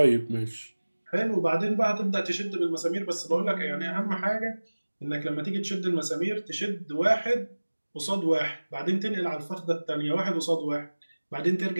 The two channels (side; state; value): both; inverted; correlation -1.00